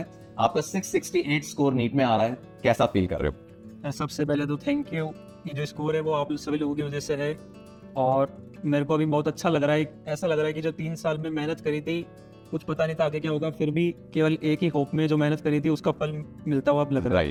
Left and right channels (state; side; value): identical; both; correlation 1.00